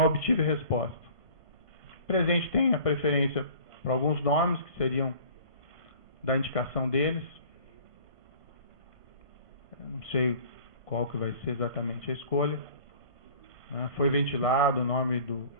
obtive resposta. O presidente tem a preferência para alguns nomes que seriam da indicação deles. Eu não sei qual que vai ser exatamente a escolha. Né? Foi ventilado o nome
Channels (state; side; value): late; right; 1.5 ms